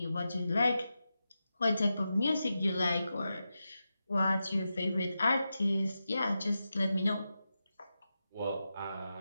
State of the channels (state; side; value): inverted; both; correlation -0.90